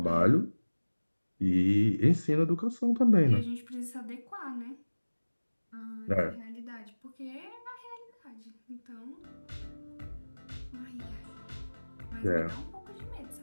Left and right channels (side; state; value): both; inverted; correlation -1.00